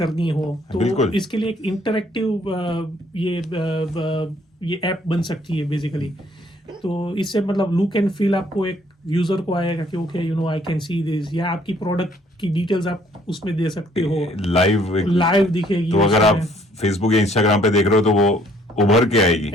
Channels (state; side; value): normal; both; correlation 0.62